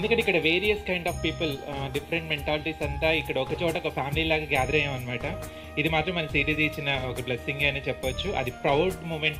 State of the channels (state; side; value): identical; both; correlation 1.00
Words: ఇక్కడ various kind of people, different mentalities అంతా ఇక్కడ ఒక చోట ఒక ఫ్యామిలీ లాగా గ్యాదర్ అయ్యాం అనమాట. ఇది మాత్రం మన సిటీజీ ఇచ్చిన ఒక బ్లెస్సింగ్ అని చెప్పొచ్చు. అది ప్రౌడ్